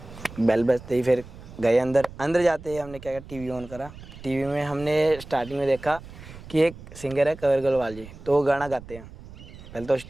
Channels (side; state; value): right; noise; rumble, 16 dB below the sound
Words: बेल बजते ही फिर गए अंदर जाते ही हमने क्या किया, टीवी ऑन करा। टीवी में हमने स्टार्टिंग में देखा कि एक सिंगर है कंवर गोलवाल जी, तो वो गाना गाते हैं। पहले तो